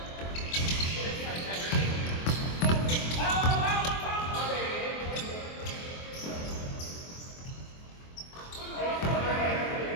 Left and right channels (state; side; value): late; right; 24 ms